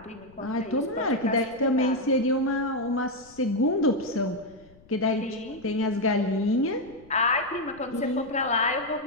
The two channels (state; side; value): noise; left; rumble, 26 dB below the sound